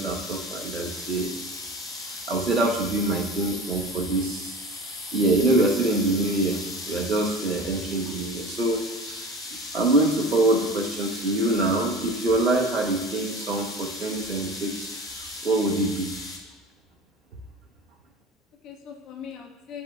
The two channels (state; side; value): normal; both; correlation 0.36